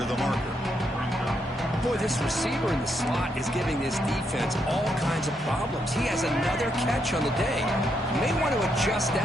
of the marker. Boy, this receiver in the slot is giving this defense all kinds of problems. He has another catch on the day. You may want to adjust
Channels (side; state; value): both; normal; correlation 0.78